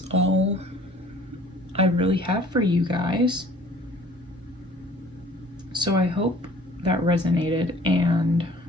all I really have for you guys. So I hope that resonated, and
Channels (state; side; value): normal; both; correlation 0.52